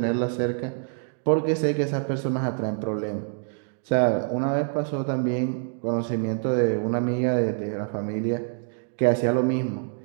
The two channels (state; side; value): silent; left; digital silence